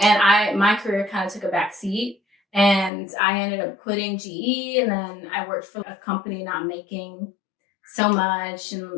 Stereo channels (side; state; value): right; drops out; at 2.9 s